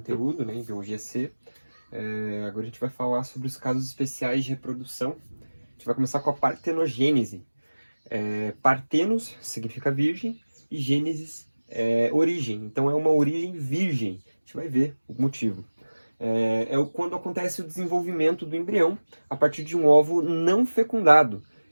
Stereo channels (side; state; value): both; inverted; correlation -1.00